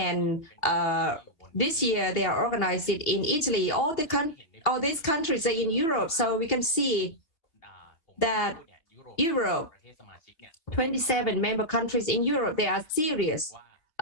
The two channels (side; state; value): right; late; 2.9 ms